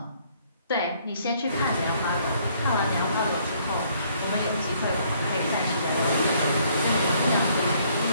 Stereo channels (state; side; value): inverted; both; correlation -0.65